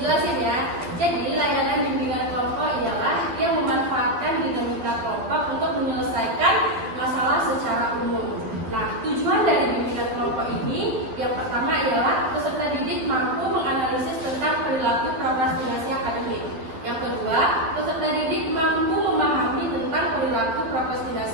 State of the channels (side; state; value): left; late; 12 ms